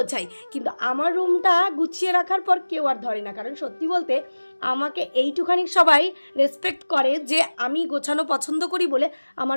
কিন্তু আমার রুমটা গুছিয়ে রাখার পর কেউ আর ধরে না, কারণ সত্যি বলতে আমাকে এইটুখানি সবাই রেসপেক্ট করে যে আমি গোছানো পছন্দ করি বলে আমার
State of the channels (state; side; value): inverted; both; correlation -1.00